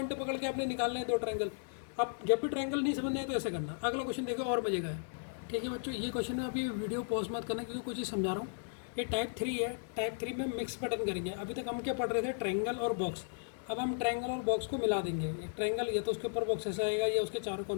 पकड़ के आपने निकालने हैं 2 ट्रायंगल। अब जब भी ट्रायंगल नहीं समझ में आए तो ऐसे करना। अगला क्वेश्चन देखो और मजे का है। ठीक है बच्चों, ये क्वेश्चन है, अभी वीडियो पॉज मत करना क्योंकि कुछ ही समझा रहा हूँ। ये टाइप 3 है, टाइप 3 में मिक्स पैटर्न करेंगे। अभी तक हम क्या पढ़ रहे थे, ट्रायंगल और बॉक्स। अब हम ट्रायंगल और बॉक्स को मिला देंगे। एक ट्रायंगल या तो उसके ऊपर बॉक्स ऐसा आएगा या उसके चारों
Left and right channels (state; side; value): silent; right; digital silence